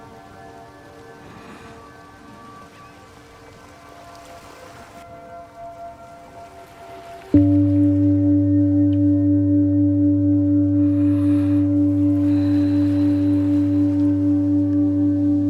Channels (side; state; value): both; identical; correlation 1.00